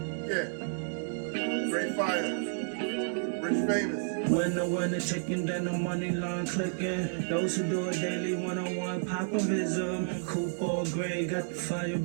Great fire. Rich famous. When the winner chicken, then the money line clicking. Those who do it daily, one-on-one popovism. Coupe all gray, got the fire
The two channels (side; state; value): left; silent; digital silence